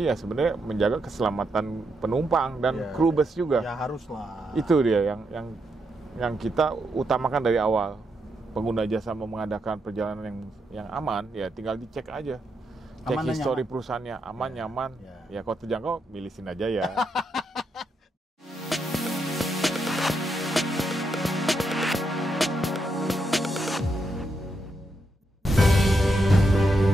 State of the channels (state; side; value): normal; both; correlation 0.81